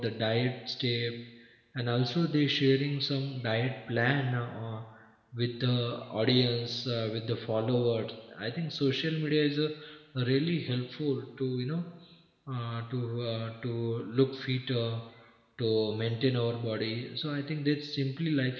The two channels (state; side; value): identical; both; correlation 1.00